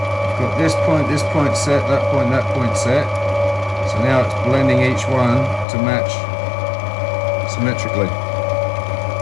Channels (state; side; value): drops out; right; at 5.7 s